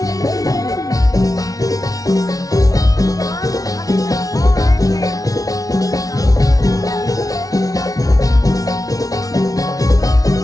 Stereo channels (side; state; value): right; late; 0.18 ms